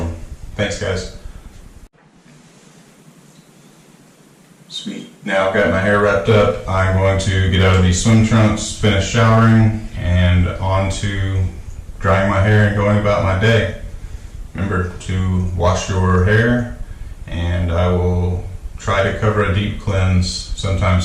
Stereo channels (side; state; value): both; identical; correlation 1.00